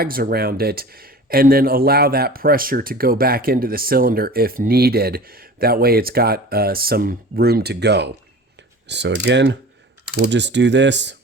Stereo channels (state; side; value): normal; both; correlation 0.39